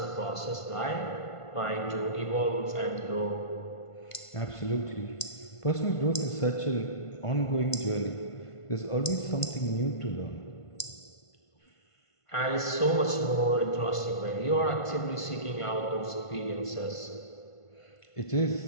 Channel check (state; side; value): late; right; 1.5 ms